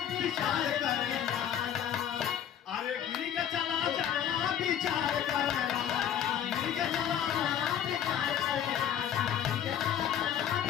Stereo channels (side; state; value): right; quieter; 9.7 dB